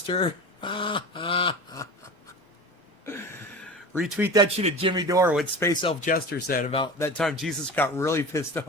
Retweet that shit at Jimmy Dore, what Space Elf Jester said about that time Jesus got really pissed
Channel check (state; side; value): normal; both; correlation 0.33